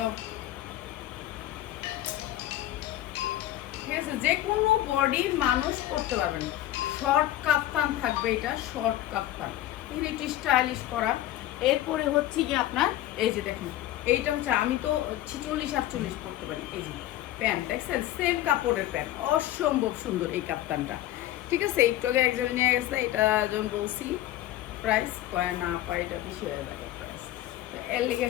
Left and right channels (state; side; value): quieter; right; 14.2 dB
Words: ঠিক আছে? যে কোনো বডির মানুষ পরতে পারবেন। শর্ট কাফতান থাকবে, এটা শর্ট কাফতান, একটু স্টাইলিশ করা। এরপরে হচ্ছে কি আপনার এই যে দেখেন এইটা হচ্ছে আমি তো 46-48 পরতে পারি। এই যে প্যান্ট দেখছেন, সেম কাপড়ের প্যান্ট, অসম্ভব সুন্দর এই কাফতানটা, ঠিক আছে? একটু আগে একজন নিয়ে গেছে, এটা যখন বলছি প্রাইস কয় না পাই, এটা বেশি হয়ে যাবে প্রাইস, এর লেগে